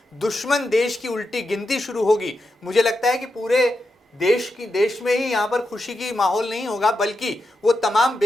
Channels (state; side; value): normal; both; correlation 0.87